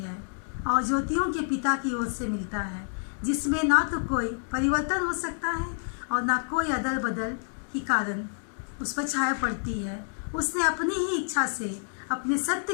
और ज्योतियों के पिता की ओर से मिलता है, जिसमें ना तो कोई परिवर्तन हो सकता है और ना कोई अदल बदल की कारण उस पर छाया पड़ती है। उसने अपनी ही इच्छा से अपने सत्य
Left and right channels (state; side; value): silent; right; 55 dB below the other